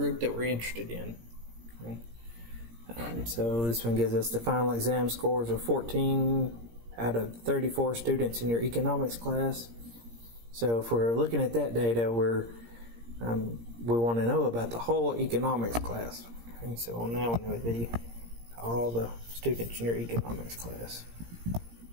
that we're interested in. So this one gives us the final exam scores of 14 out of 34 students in your economics class. So if we're looking at that data, we want to know about the whole economics class. Okay, so on that one it would be all the students in your economics class.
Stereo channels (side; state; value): left; late; 17 ms